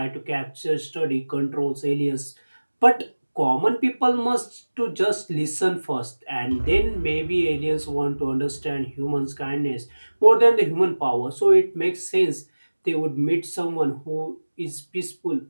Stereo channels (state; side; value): inverted; both; correlation -1.00